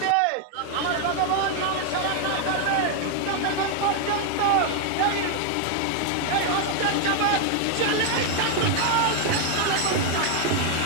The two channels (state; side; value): different; both; correlation 0.00